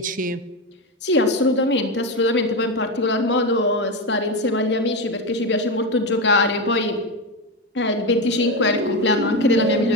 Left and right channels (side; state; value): both; normal; correlation 0.14